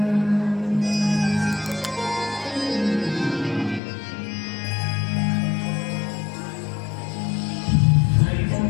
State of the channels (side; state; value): right; drops out; at 3.8 s